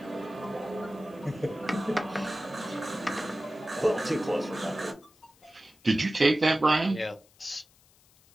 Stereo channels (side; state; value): left; noise; hiss, 30 dB below the sound